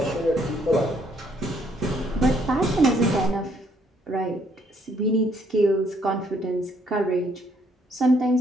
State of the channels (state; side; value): normal; both; correlation 0.68